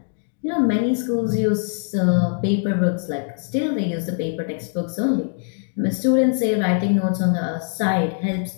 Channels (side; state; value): right; silent; 61 dB below the other